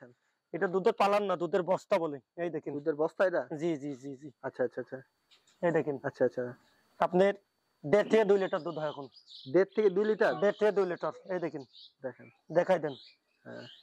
এটা দুধের পালান না, দুধের বস্তা বলে। এই দেখেন। দুধের বস্তা এটা? জি জি জি জি। আচ্ছা আচ্ছা আচ্ছা এই দেখেন আচ্ছা আচ্ছা। আপনার 1.5 থেকে 2 লিটার দুধ হয় এখন। 1.5 থেকে 2 লিটার? 1.5 থেকে 2 লিটার। এই দেখেন, দেখেন দেখাই দেন। হ্যাঁ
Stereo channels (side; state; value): both; identical; correlation 1.00